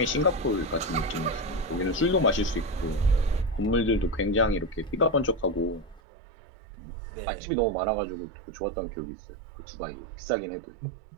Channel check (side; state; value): left; drops out; at 6.0 s